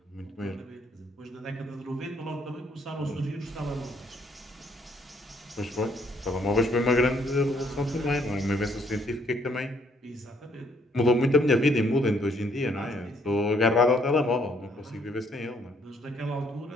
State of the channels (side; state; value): both; normal; correlation 0.67